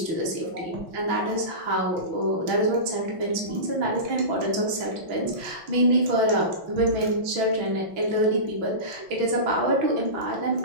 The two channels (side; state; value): left; late; 6.0 ms